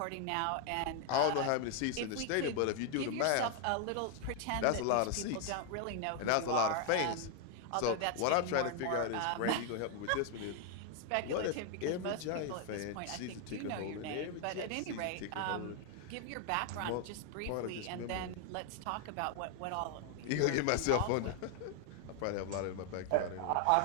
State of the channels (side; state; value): both; different; correlation 0.00